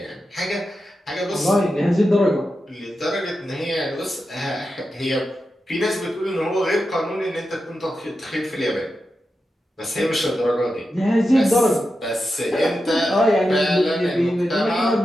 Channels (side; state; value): both; normal; correlation 0.90